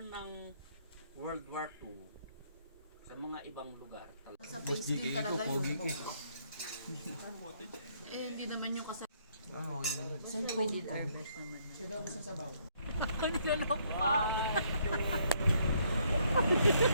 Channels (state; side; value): inverted; both; correlation -0.69